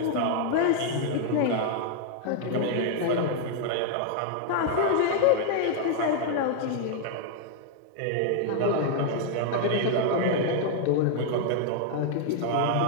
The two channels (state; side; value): different; both; correlation 0.00